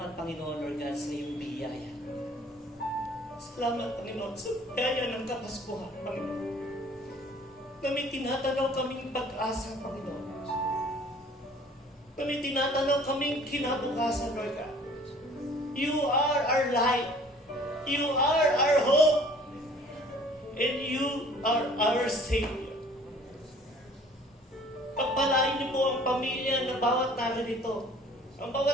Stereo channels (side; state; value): both; normal; correlation 0.52